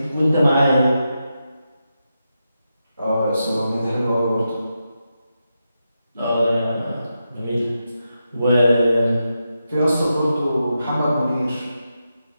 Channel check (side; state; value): both; inverted; correlation -0.87